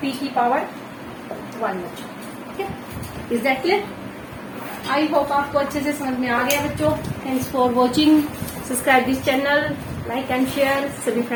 p की पावर 1 बच्चों। ठीक है, is that clear? I hope आपको अच्छे से समझ में आ गया बच्चों। Thanks for watching, subscribe this channel, like and share, सभी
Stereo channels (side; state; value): both; identical; correlation 1.00